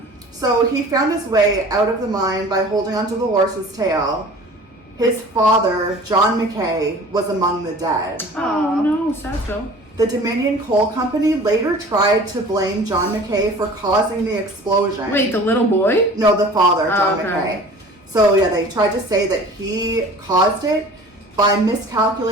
So he found his way out of the mine by holding onto the horse's tail. His father, John McKay, was among the dead. Oh no, sad though. The Dominion Coal Company later tried to blame John McKay for causing the explosion. Wait, the little boy? No, the father, John okay. McKay. So yeah, they tried to say that he caused it by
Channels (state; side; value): normal; both; correlation 0.44